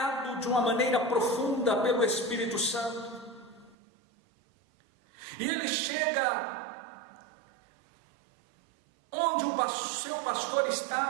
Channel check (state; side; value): drops out; left; at 3.8 s